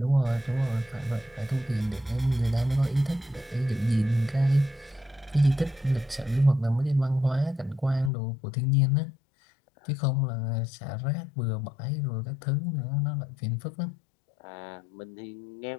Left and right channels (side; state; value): right; drops out; at 8.1 s